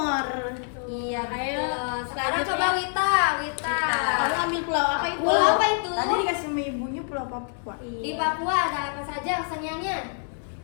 Iya, Ayo, betul. Sekarang coba Wita. Kamu ambil pulau apa itu? Pulau apa itu? Tadi dikasih sama ibunya Pulau Papua. Di Papua ada apa saja keseniannya?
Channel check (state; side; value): silent; right; 59 dB below the other